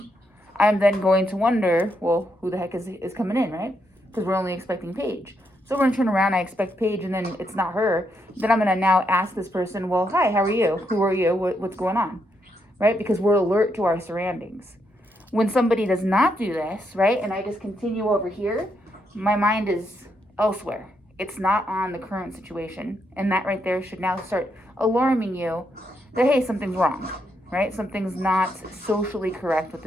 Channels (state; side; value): normal; both; correlation 0.79